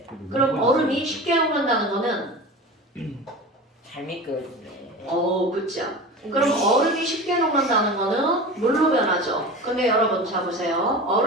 그럼 얼음이 쉽게 녹는다는 거는 잘 미끄러지네. 그쵸. 그럼 얼음이 쉽게 녹는다는 거는 물로 변하죠. 근데 여러분 자 보세요.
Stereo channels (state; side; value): normal; both; correlation 0.32